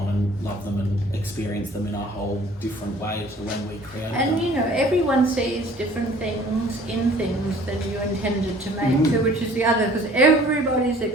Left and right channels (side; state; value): both; normal; correlation 0.52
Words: and love them and experience them in a whole different way to when we created them. And you know, everyone sees different things in things that you intended to make too, which is the other, because everybody's